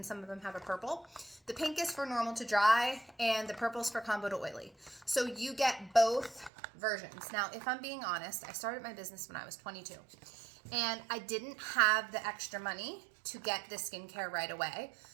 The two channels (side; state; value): left; drops out; at 6.5 s